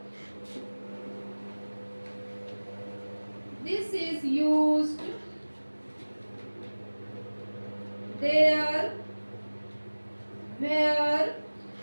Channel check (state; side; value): inverted; both; correlation -1.00